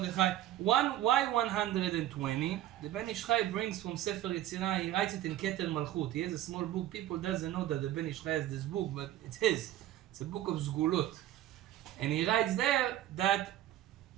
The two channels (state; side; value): quieter; left; 13.3 dB